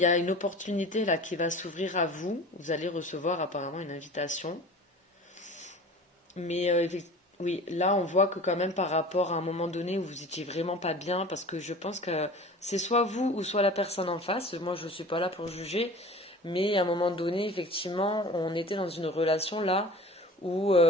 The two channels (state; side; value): normal; both; correlation 0.40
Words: a une opportunité là qui va s'ouvrir à vous. Vous allez recevoir apparemment une invitation. Mais oui, là on voit que quand même par rapport à un moment donné où vous étiez vraiment pas bien, parce que je pense que c'est soit vous ou soit la personne en face. Moi je ne suis pas là pour juger, mais à un moment donné, effectivement, on était dans une relation là où